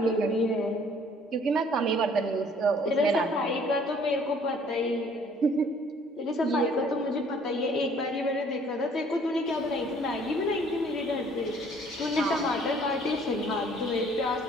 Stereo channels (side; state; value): both; normal; correlation 0.58